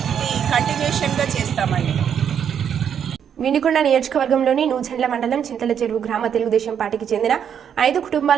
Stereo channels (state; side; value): quieter; left; 8.3 dB